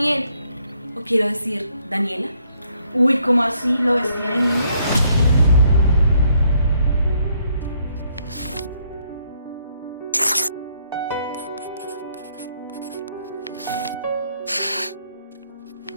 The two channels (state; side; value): inverted; both; correlation -0.70